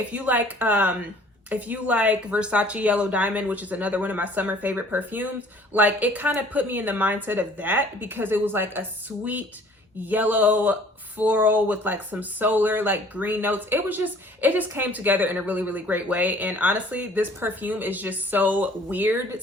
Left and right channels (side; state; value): both; normal; correlation 0.53